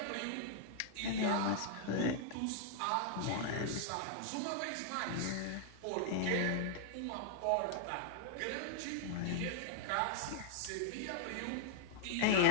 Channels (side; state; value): both; different; correlation -0.01